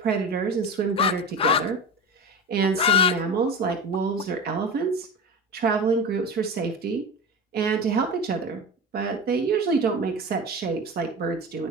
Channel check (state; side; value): normal; both; correlation 0.28